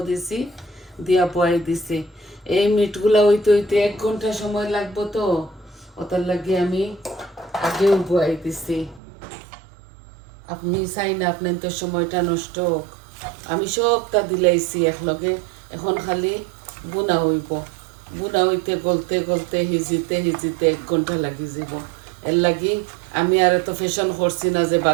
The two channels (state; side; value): drops out; left; at 9.0 s